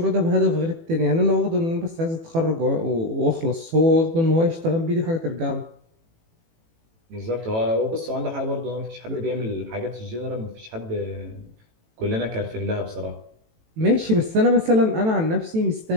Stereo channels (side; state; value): left; late; 18 ms